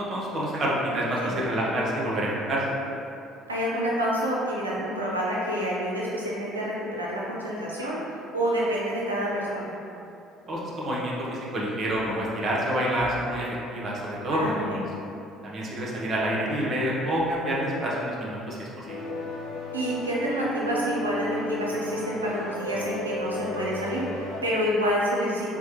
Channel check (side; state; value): both; normal; correlation 0.51